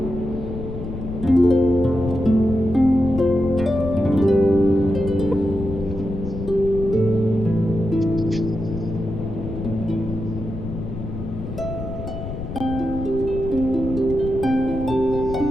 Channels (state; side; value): noise; left; rumble, 8 dB below the sound